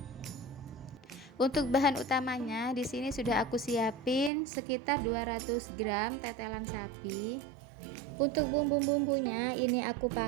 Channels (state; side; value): drops out; left; at 4.3 s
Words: Untuk bahan utamanya di sini sudah aku siapin sekitar 200 gram tetelan sapi. Untuk bumbu-bumbunya ini aku